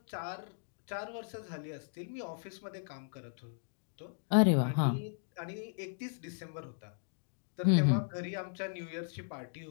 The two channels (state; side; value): silent; right; digital silence